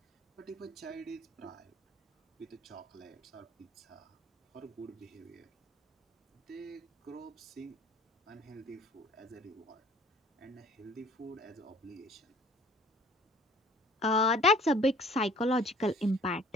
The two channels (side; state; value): both; normal; correlation 0.52